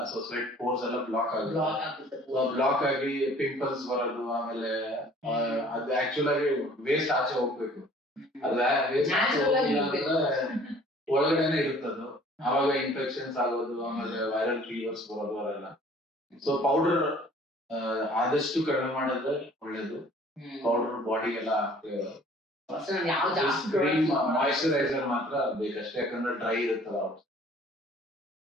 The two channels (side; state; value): both; normal; correlation 0.53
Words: ಸೊ ಸ್ವೆಟ್ ಪೋರ್ಸ್ ಎಲ್ಲ ಬ್ಲಾಕ್ ಆಗುತ್ತೆ. ಬ್ಲಾಕ್ ಆಗಿ ಪಿಂಪಲ್ಸ್ ಬರೋದು, ಆಮೇಲೆ ಅದು ಆಕ್ಚುಲ್ ಆಗಿ ವೇಸ್ಟ್ ಆಚೆ ಹೋಗ್ಬೇಕು. ಅದ ವೇಸ್ಟ್ ಆಚೆ ಹೋಗಿಲ್ಲ ಅಂದ್ರೆ ಒಳಗಡೆನೆ ಇರುತ್ತದು. ಅವಾಗ ಇನ್ಫೆಕ್ಷನ್ಸ್ ಆಗೋದು, ಆಮೇಲೆ ವೈರಲ್ ಫೀವರ್ಸ್ ಬರೋದು ಅವೆಲ್ಲ. ಸೊ ಪೌಡರ್ ಆದಷ್ಟು ಕಡಿಮೆ ಮಾಡಿದ್ರೆ ಒಳ್ಳೇದು. ಪೌಡರ್ ಬಾಡಿಗೆಲ್ಲ ಮಾಯಿಶ್ಚರೈಸರ್ ಮಾತ್ರ ಬೇಕಷ್ಟೇ, ಯಾಕಂದ್ರೆ ಡ್ರೈ ಇರುತ್ತಲ್ಲ.